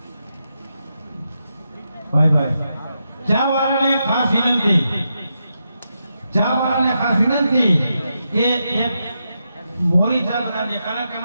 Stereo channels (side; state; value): both; inverted; correlation -0.85